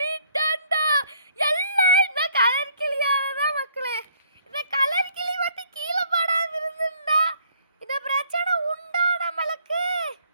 எல்லாம் இந்த கலர் கிளியாலதான் மக்களே. இந்த கலர் கிளி வந்து கீழே படாம இருந்தா இந்த பிரச்சனை உண்டா நம்மளுக்கு?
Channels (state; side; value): inverted; both; correlation -0.63